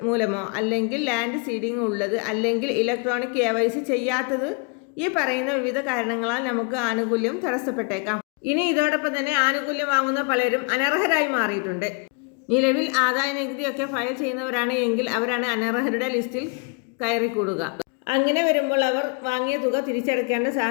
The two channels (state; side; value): quieter; right; 33.0 dB